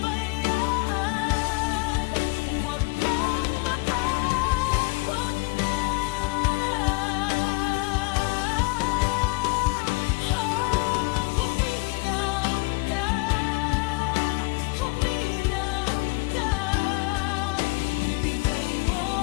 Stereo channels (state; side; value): quieter; right; 26.9 dB